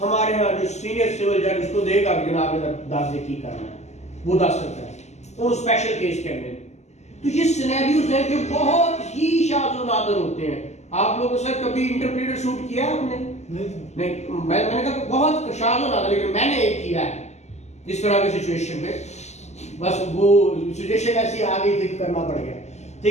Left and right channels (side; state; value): right; late; 0.33 ms